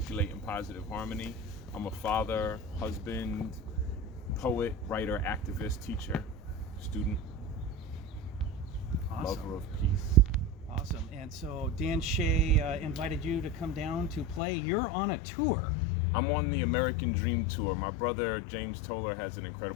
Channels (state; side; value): drops out; right; at 14.4 s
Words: in positive harmony. I'm a father, husband, poet, writer, activist, teacher, student, Awesome. lover of peace. Awesome. And so Dan Shea invited you to come down to play. You're on a tour. I'm on the American Dream Tour. My brother James Toller has an